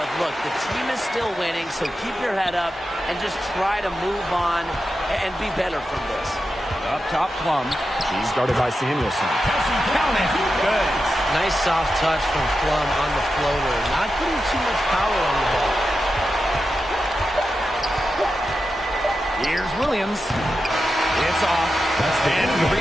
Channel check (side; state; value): both; normal; correlation 0.90